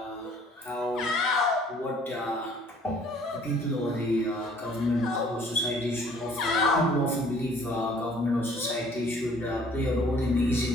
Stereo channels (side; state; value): both; normal; correlation 0.56